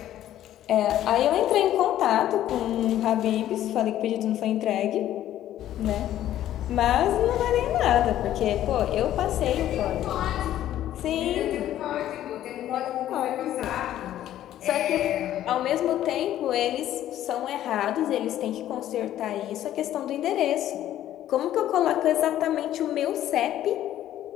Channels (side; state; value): right; quieter; 12.4 dB